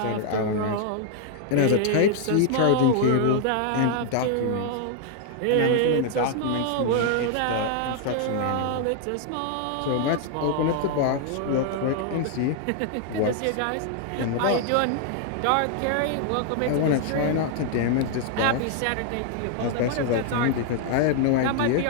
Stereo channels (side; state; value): both; different; correlation 0.00